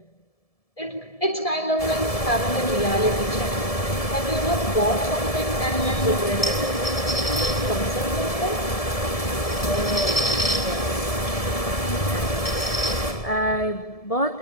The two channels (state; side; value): late; right; 1.7 ms